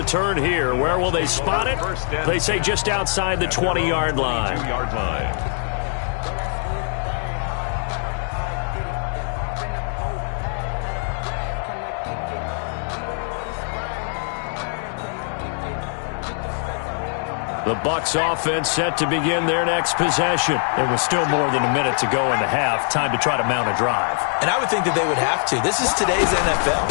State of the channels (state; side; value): silent; right; 58 dB below the other